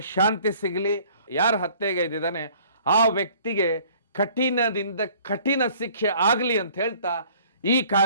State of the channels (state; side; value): inverted; both; correlation -0.54